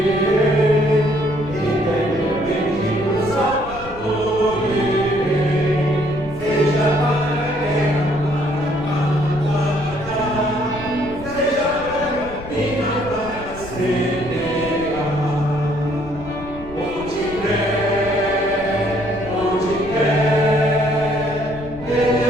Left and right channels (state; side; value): noise; left; rumble, 15 dB below the sound